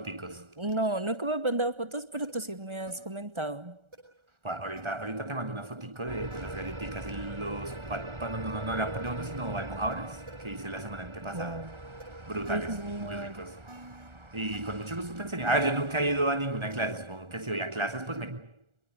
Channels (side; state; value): left; late; 1.4 ms